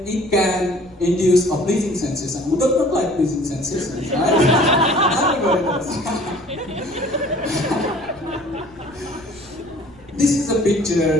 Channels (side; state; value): right; noise; rumble, 25 dB below the sound